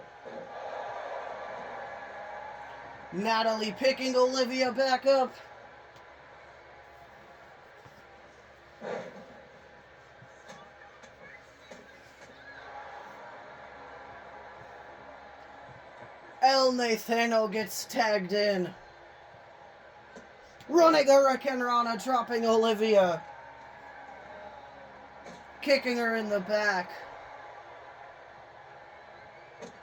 Natalie picking Olivia back up. El Nathano gets tagged in. Running Hurricane Rana, dropping Olivia. Kicking her in the back.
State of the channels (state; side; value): identical; both; correlation 1.00